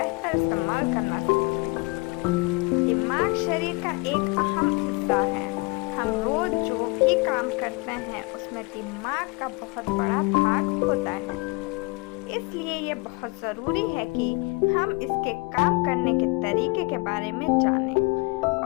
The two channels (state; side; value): quieter; right; 26.9 dB